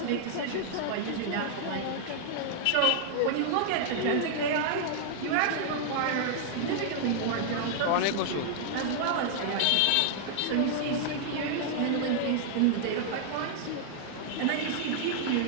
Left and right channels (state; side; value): different; both; correlation -0.01